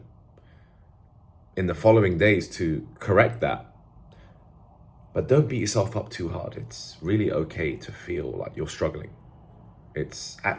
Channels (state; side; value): identical; both; correlation 1.00